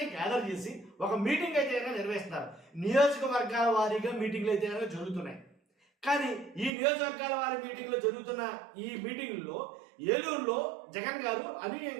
గ్యాదర్ చేసి ఒక మీటింగ్ అయితే నిర్వహిస్తున్నారు. నియోజకవర్గాల వారీగా మీటింగ్లు అయితే జరుగుతున్నాయి. కానీ ఈ నియోజకవర్గాల వారి మీటింగ్లో జరుగుతున్న ఈ మీటింగ్లో ఏలూరులో జగన్ గారు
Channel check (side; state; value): left; drops out; at 6.7 s